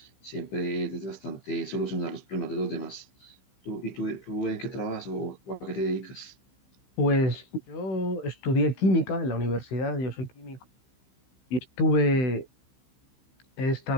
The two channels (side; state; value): right; late; 15 ms